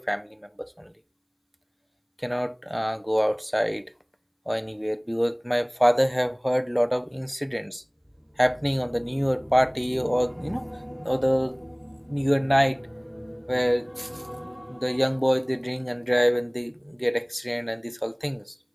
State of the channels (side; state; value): both; identical; correlation 1.00